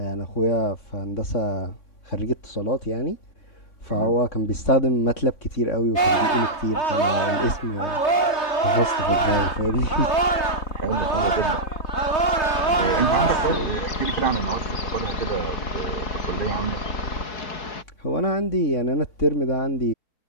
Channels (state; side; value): late; right; 3.3 ms